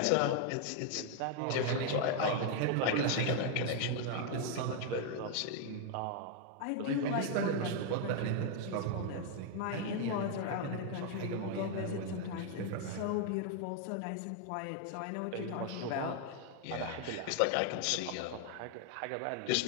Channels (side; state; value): both; different; correlation 0.00